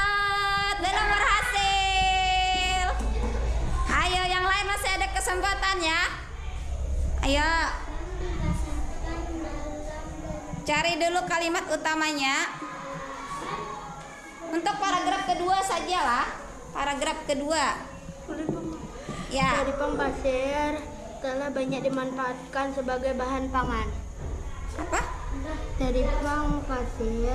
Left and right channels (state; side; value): identical; both; correlation 1.00